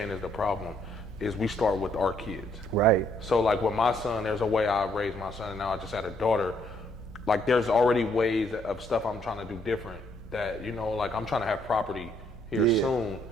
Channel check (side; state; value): both; normal; correlation 0.70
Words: is the problem, is we start with our kids. Right. So like with my son, there's a way I raised my son, and now I just had a daughter. Like there's already ways of stuff I'm trying to do different that, like I'm trying to have property here soon.